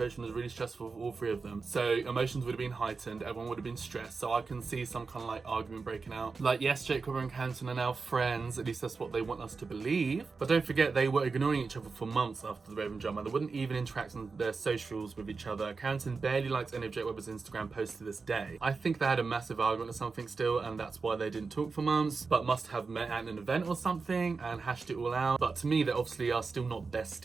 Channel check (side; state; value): left; quieter; 4.5 dB